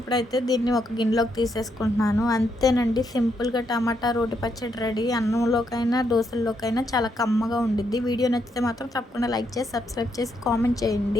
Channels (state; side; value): normal; both; correlation 0.78